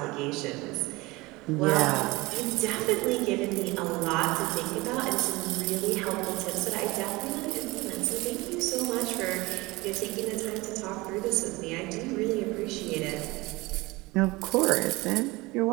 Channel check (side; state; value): left; quieter; 22.2 dB